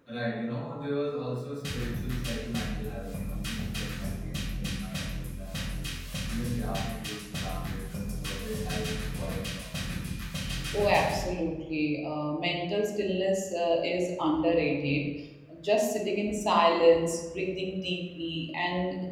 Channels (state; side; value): identical; both; correlation 1.00